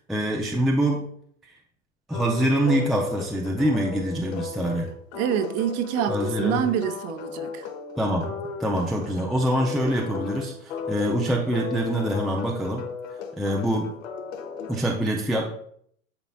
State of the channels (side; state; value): both; normal; correlation 0.60